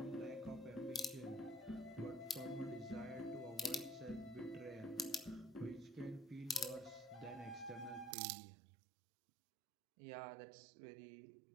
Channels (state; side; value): drops out; left; at 8.2 s